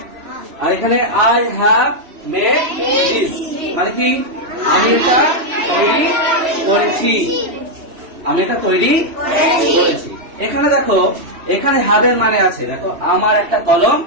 আর এখানে আই হ্যাভ মেড দিস, মানে কি আমি এটা তৈরি করেছি, আমি এটা তৈরি করেছি। এখানে দেখো এখানে হ্যাভের মানে আছে, দেখো আমার একটা কলম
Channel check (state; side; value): late; left; 3.1 ms